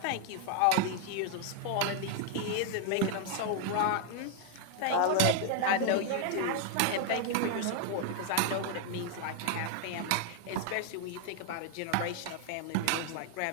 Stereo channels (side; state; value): both; different; correlation 0.00